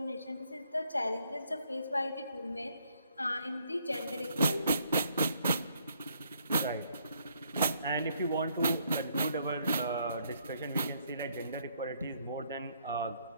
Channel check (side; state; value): both; inverted; correlation -0.70